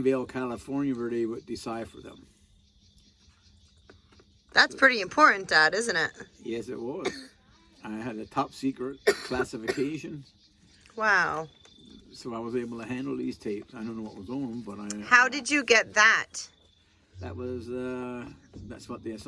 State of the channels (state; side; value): identical; both; correlation 1.00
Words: California, where they would decipher them. That's pretty important, Dad, isn't it? Yes, it was. I had a top secret classification, Wow. so I was able to handle these tapes. I don't know what was on them, but How did you get that? that was that's what they